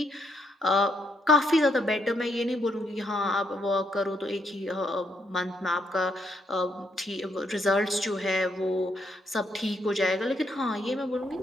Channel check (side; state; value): both; normal; correlation 0.76